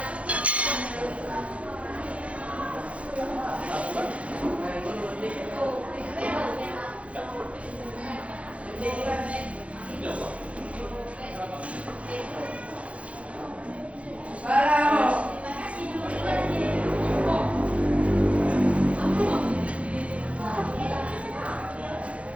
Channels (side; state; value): left; late; 0.063 ms